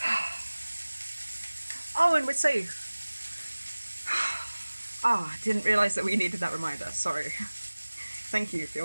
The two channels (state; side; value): inverted; both; correlation -1.00